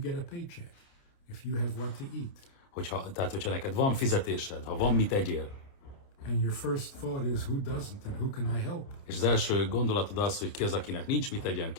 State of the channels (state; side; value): late; right; 29 ms